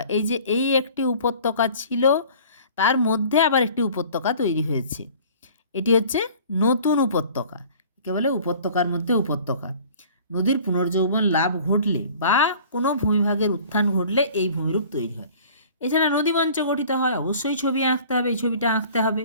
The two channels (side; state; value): both; inverted; correlation -0.48